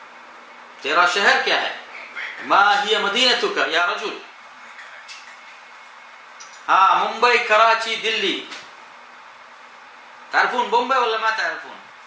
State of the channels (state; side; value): identical; both; correlation 1.00